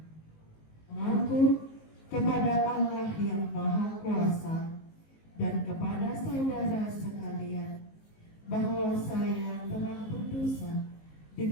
Mengaku kepada Allah yang Maha Kuasa dan kepada saudara sekalian bahwa saya telah berdosa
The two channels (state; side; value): late; right; 19 ms